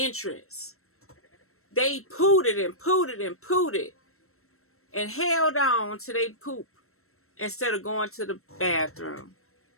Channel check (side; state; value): right; late; 0.63 ms